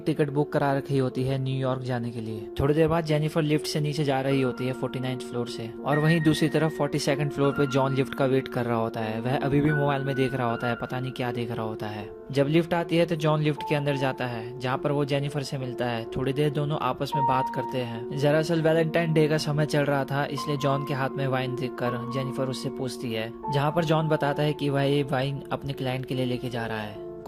टिकट बुक करा रखी होती है न्यूयॉर्क जाने के लिए। थोड़ी देर बाद जेनिफर लिफ्ट से नीचे जा रही होती है 49th फ्लोर से, और वहीं दूसरी तरफ 42nd फ्लोर पे जॉन लिफ्ट का वेट कर रहा होता है। वह अभी भी मोबाइल में देख रहा होता है, पता नहीं क्या देख रहा होता है। जब लिफ्ट आती है तो जॉन लिफ्ट के अंदर जाता है जहाँ पर वो जेनिफर से मिलता है। थोड़ी देर दोनों आपस में बात करते हैं। दरअसल वैलेंटाइन डे का समय चल रहा था, इसलिए जॉन के हाथ में वाइन देखकर जेनिफर उससे पूछती है, जहाँ पर जॉन बताता है कि वह ये वाइन अपने क्लाइंट के लिए लेके जा रहा है।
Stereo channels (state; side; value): identical; both; correlation 1.00